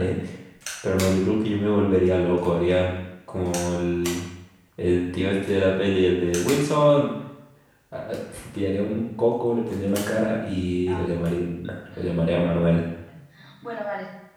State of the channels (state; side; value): identical; both; correlation 1.00